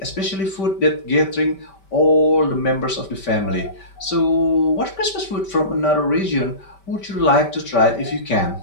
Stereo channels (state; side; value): late; right; 5.1 ms